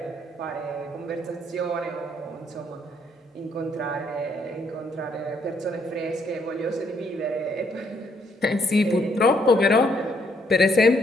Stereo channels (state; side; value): normal; both; correlation 0.70